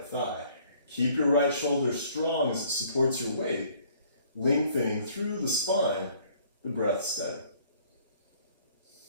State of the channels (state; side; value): inverted; both; correlation -0.59